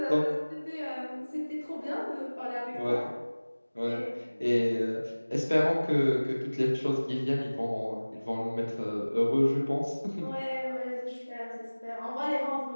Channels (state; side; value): inverted; both; correlation -1.00